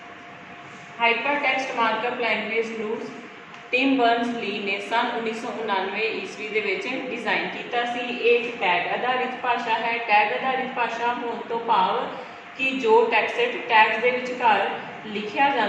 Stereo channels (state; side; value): identical; both; correlation 1.00